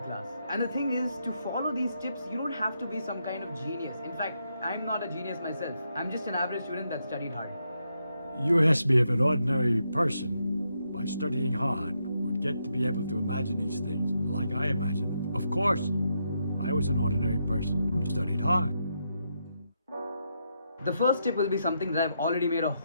And the thing is, to follow these tips, you don't have to be some kind of genius. In fact, I'm not a genius myself. I'm just an average student that studied hard. You asked me if an ordinary person, by studying hard, would get to be able to imagine these things like I imagine them. Of course, I was an ordinary person who studied hard. The first tip will be something that I've already made a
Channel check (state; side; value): inverted; both; correlation -0.81